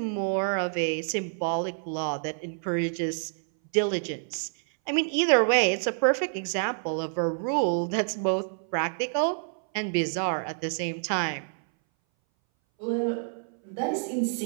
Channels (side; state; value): left; silent; 59 dB below the other